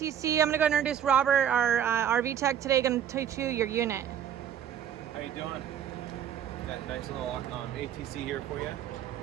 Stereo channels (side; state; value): left; quieter; 9.4 dB